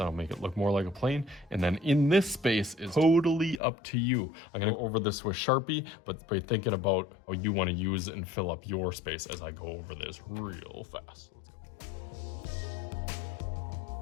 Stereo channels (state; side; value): drops out; right; at 3.6 s